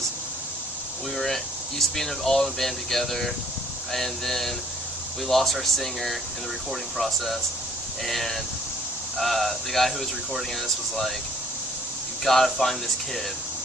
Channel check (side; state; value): both; normal; correlation 0.60